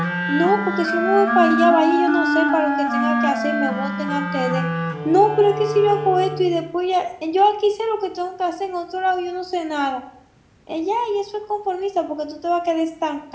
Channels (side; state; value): both; identical; correlation 1.00